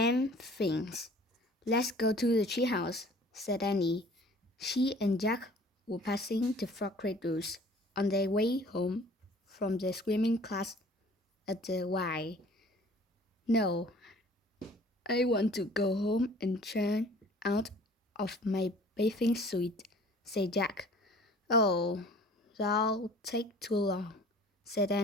Things. "Let's go to the treehouse," said Annie. She and Jack were passing the frog cradles on their way home from their swimming class at the Y. "No, I want to go home and change out of my bathing suit," said Jack. "Oh, that'll take too long," said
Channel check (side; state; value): both; normal; correlation 0.50